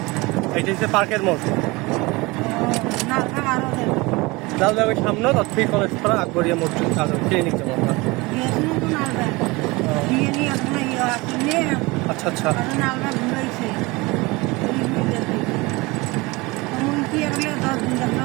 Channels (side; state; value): left; quieter; 23.6 dB